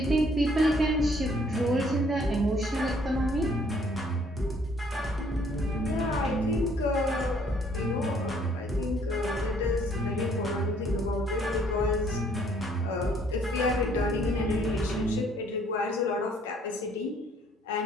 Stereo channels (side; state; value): both; normal; correlation 0.63